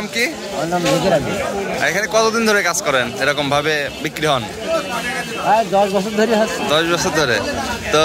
কি? এখানে কতদিন ধরে কাজ করেন, এরকম ভাবে বিক্রি হন? 10 বছর ধরে। 10 বছর ধরে। তো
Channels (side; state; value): both; identical; correlation 1.00